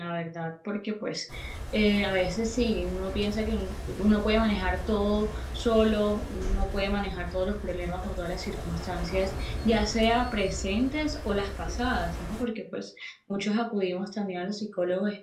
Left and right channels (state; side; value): identical; both; correlation 1.00